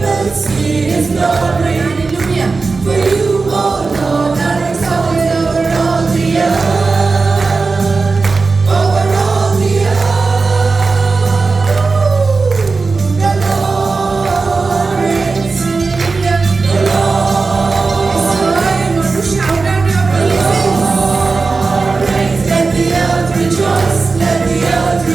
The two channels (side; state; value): left; quieter; 4.1 dB